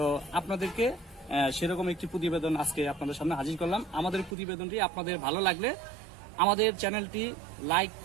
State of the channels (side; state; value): left; drops out; at 4.4 s